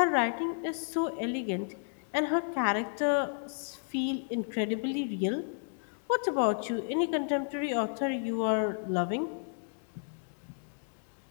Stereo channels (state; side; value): silent; right; digital silence